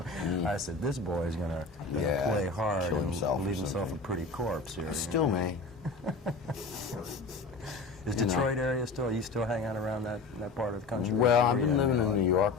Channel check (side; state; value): right; quieter; 3.8 dB